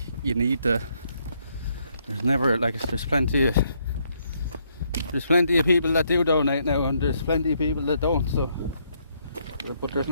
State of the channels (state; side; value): inverted; both; correlation -0.73